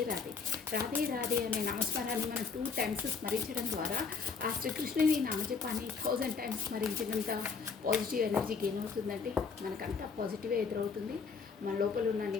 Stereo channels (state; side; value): quieter; right; 5.3 dB